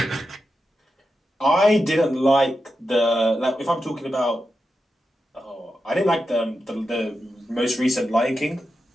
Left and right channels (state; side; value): normal; both; correlation 0.89